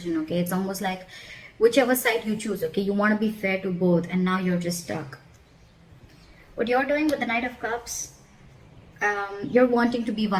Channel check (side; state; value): both; identical; correlation 1.00